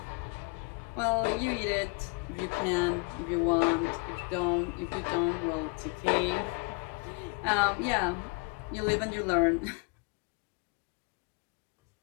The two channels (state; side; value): quieter; right; 30.5 dB